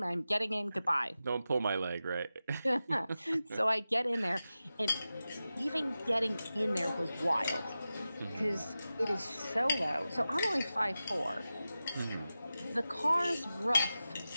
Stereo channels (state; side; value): inverted; both; correlation -0.93